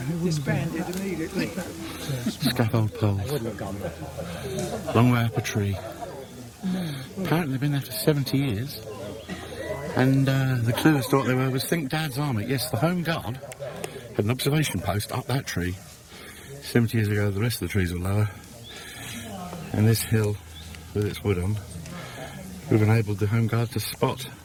Disbanded immediately. Scaffold poles. Long way up a tree. Apparently they've been there for 70 years. And the clueless thought they were was Think Dad's Army. Yes, the Home Guard had an observation post up that tree. 70 years ago, the rest of the trees were lower. And this hill, with its wood on, we've enabled the Home Guard to spot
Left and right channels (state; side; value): identical; both; correlation 1.00